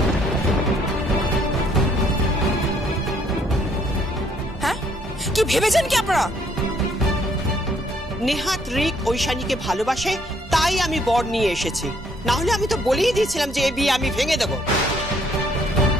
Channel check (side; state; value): both; normal; correlation 0.66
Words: হ্যাঁ, কি ভেবেছেন কি আপনারা? নেহাত রিক ঐশানীকে ভালোবাসে, তাই আমি বর নিয়ে এসেছি। না হলে আমি তো বলেই দিয়েছিলাম যে এই বিয়ে আমি ভেঙে দেব।